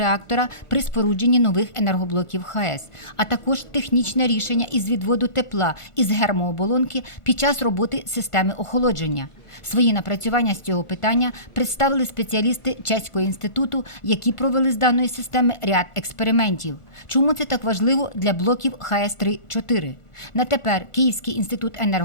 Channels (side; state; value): right; late; 1.4 ms